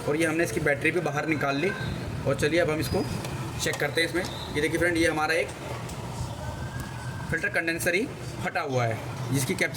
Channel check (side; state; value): both; identical; correlation 1.00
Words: और ये हमने इसकी बैटरी भी बाहर निकाल ली। और चलिए अब हम इसको चेक करते हैं इसमें। ये देखिए फ्रेंड, ये हमारा एक फ़िल्टर कंडेंसर ही फटा हुआ है, जिसकी